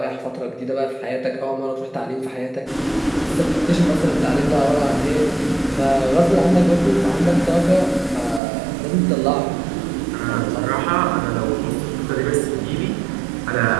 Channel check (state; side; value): drops out; left; at 8.4 s